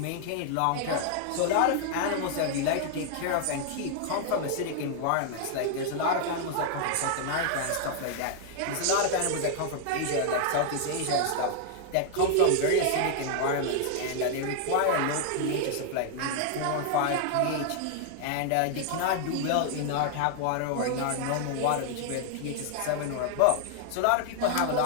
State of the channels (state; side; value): different; both; correlation 0.00